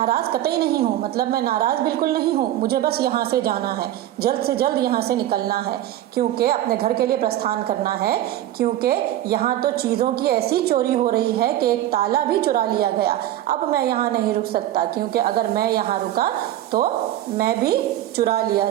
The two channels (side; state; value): left; quieter; 13.3 dB